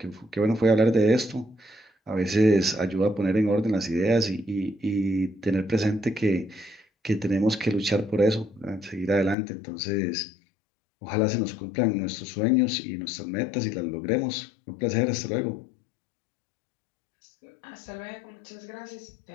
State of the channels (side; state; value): right; drops out; at 9.3 s